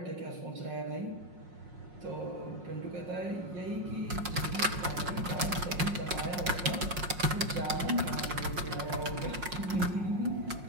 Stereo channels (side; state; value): left; late; 5.5 ms